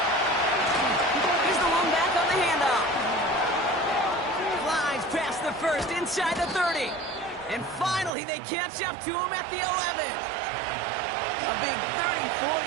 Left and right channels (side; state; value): left; drops out; at 8.1 s